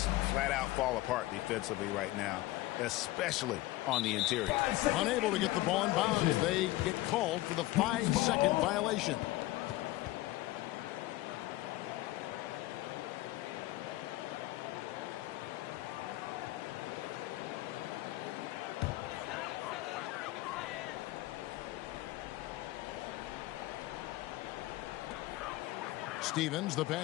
flat out fall apart defensively right now, especially on the interior. Unable to get the ball in bounds. They get called for the 5-second violation. Stevens, the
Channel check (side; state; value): right; quieter; 17.6 dB